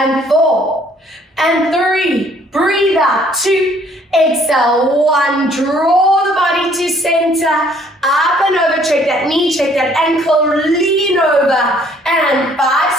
4. And 3. Breathe out. 2. Exhale, 1. Draw the body to center. Up and over. Check that knee, check that ankle. Lean over. And 5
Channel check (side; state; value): both; normal; correlation 0.61